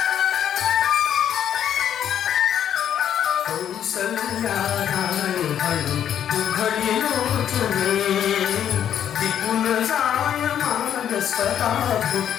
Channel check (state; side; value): quieter; right; 9.7 dB